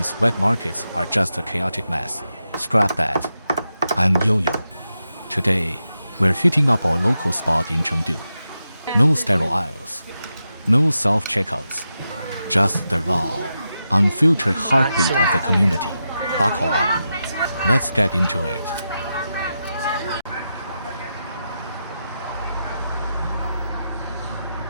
wet markets are just a chaotic mess. Scrap that. I'm Yo-Yo. Today, we're hitting up our local spot in Chengdu. No sterile aisles, no self-checkouts, just the raw, unfiltered heartbeat of the community. Buckle up. Let's get into it.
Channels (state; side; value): inverted; both; correlation -0.88